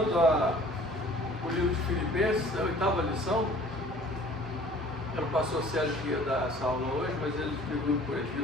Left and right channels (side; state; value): both; normal; correlation 0.50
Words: o livro de Filipenses, a 8ª lição. Era o pastor Sérgio que ia dar essa aula hoje, mas ele escreveu por